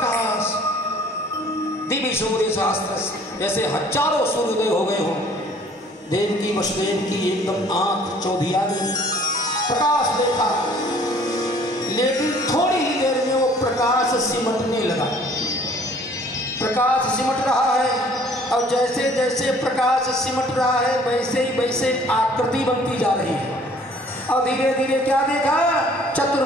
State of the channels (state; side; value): normal; both; correlation 0.55